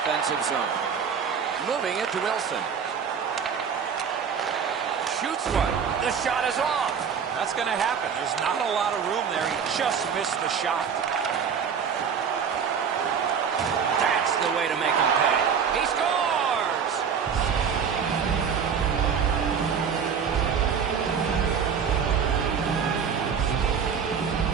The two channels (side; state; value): left; quieter; 6.9 dB